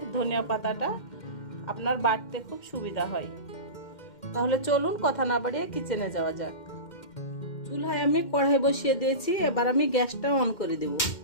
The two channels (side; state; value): right; late; 2.1 ms